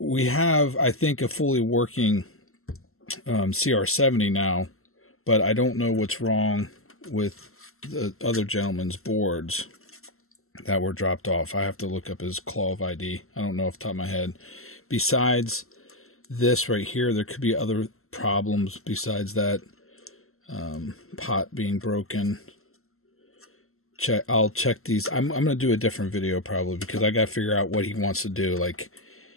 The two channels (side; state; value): right; late; 0.62 ms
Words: have, I think, a fully working CR70 now, but I don't know what's wrong with the other gentleman's boards that were dropped off. I have to look up his claw of ID. I don't know off the top of my head. Besides this right here, there could be other problems besides that. Pot being broken. I'll check these. I'm gonna do a different video probably, because I gotta figure out what he wants to do. Like,